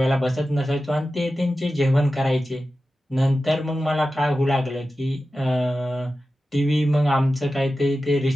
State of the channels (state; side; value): normal; both; correlation 0.93